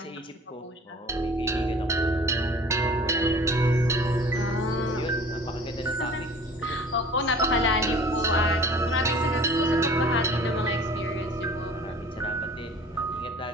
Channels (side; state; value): both; normal; correlation 0.46